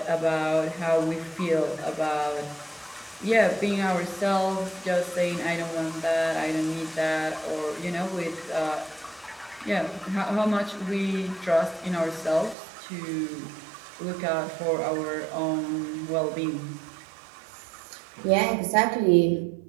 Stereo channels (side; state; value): left; drops out; at 12.6 s